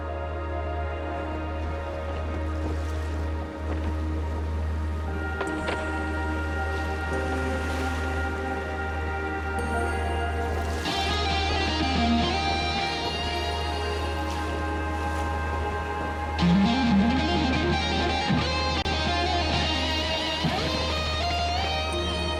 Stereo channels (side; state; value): both; identical; correlation 1.00